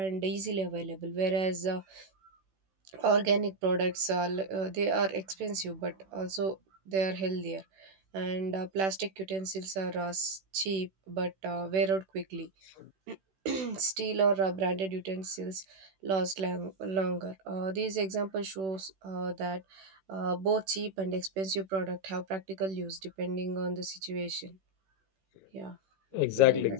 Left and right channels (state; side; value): late; left; 16 ms